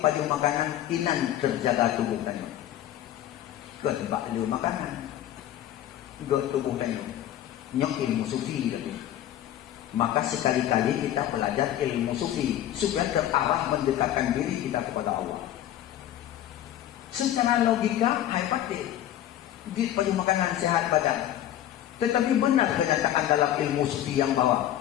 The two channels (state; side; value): quieter; right; 12.2 dB